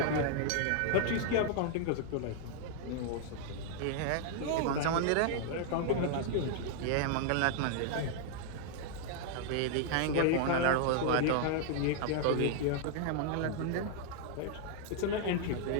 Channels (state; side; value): different; both; correlation -0.01